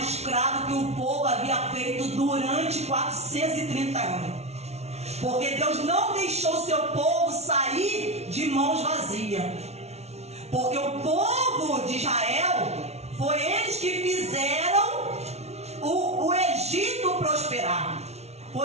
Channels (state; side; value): late; left; 0.31 ms